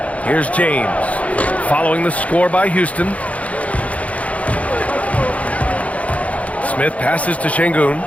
Here's James, following the score by Houston. Smith passes to Şengün.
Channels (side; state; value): right; late; 0.066 ms